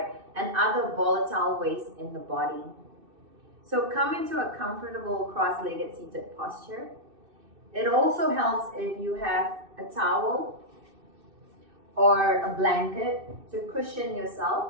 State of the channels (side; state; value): left; late; 2.6 ms